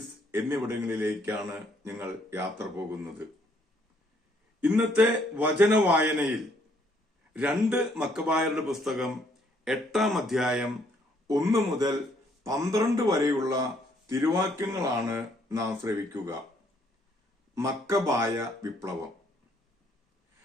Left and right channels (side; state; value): both; normal; correlation 0.67